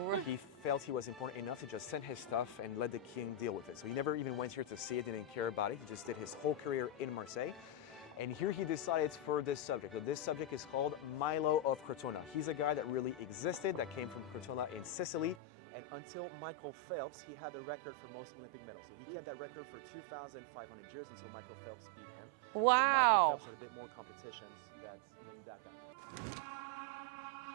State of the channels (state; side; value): drops out; left; at 15.4 s